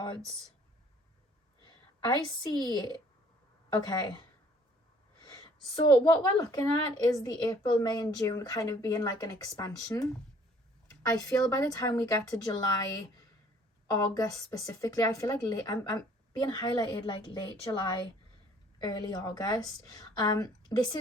I see. Okay, so what we're looking at is the April, May and June kind of being like an expansion. I feel by the time we get to July, August specifically, I feel like I'm being highlighted like late July, early August. This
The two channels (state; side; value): normal; both; correlation 0.57